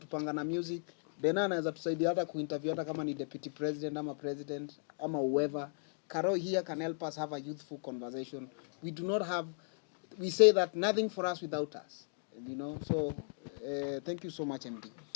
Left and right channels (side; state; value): right; silent; digital silence